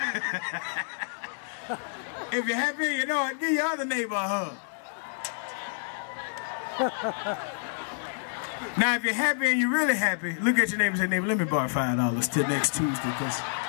If you're happy and you know it, give your other neighbor a hug. Now, if you're happy and you're really happy, look at your neighbor and say, neighbor, let me borrow $5 till next Tuesday, because...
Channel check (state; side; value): silent; right; digital silence